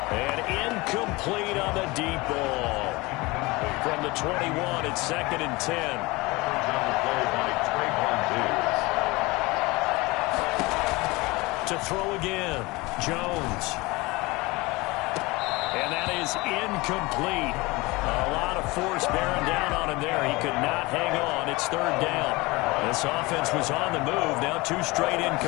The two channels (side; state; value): right; quieter; 23.0 dB